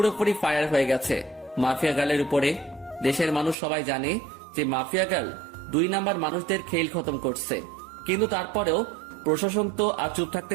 ফায়ার হয়ে গেছে মাফিয়া গার্লের উপরে। দেশের মানুষ সবাই জানে যে মাফিয়া গার্ল 2 নাম্বার মানুষদের খেইল খতম করছে, কিন্তু তারপরেও প্রশাসন তো আর চুপ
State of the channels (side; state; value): left; drops out; at 3.6 s